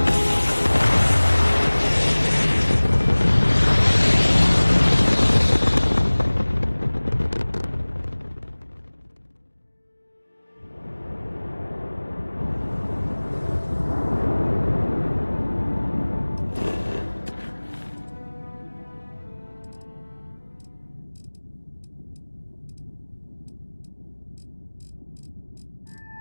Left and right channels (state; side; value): inverted; both; correlation -1.00